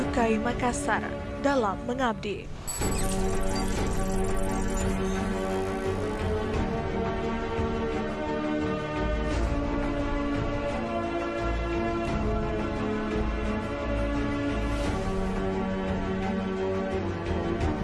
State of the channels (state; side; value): identical; both; correlation 1.00